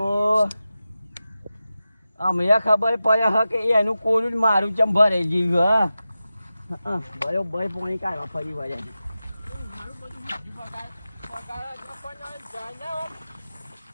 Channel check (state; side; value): inverted; both; correlation -0.93